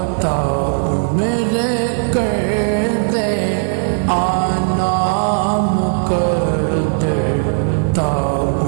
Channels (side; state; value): left; silent; digital silence